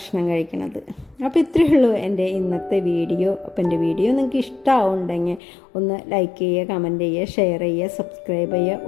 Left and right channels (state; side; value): drops out; right; at 5.4 s